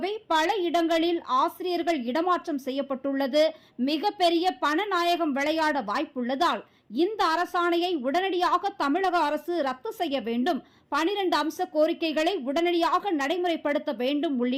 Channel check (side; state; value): both; identical; correlation 1.00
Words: பல இடங்களில் ஆசிரியர்கள் இடமாற்றம் செய்யப்பட்டுள்ளது. மிகப்பெரிய பணநாயகம் விளையாட வாய்ப்புள்ளதால் இந்த அரசாணையை உடனடியாக தமிழக அரசு ரத்து செய்ய வேண்டும், 12 அம்ச கோரிக்கைகளை உடனடியாக நடைமுறைப்படுத்த வேண்டும்